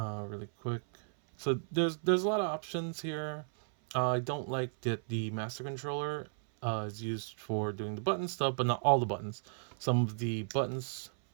quick. So there's a lot of options here. I don't like that the master controller is used for doing the button stuff, but not all the buttons. Some of the buttons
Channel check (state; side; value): silent; left; 55 dB below the other